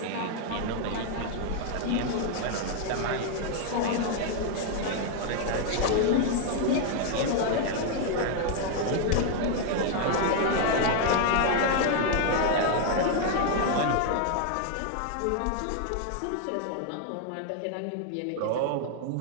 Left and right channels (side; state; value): both; different; correlation 0.00